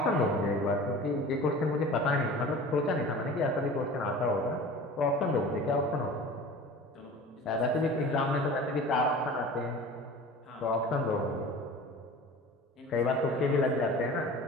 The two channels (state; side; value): normal; both; correlation 0.39